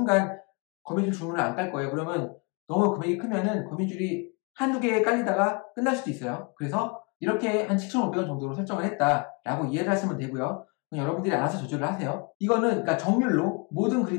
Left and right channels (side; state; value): right; quieter; 32.0 dB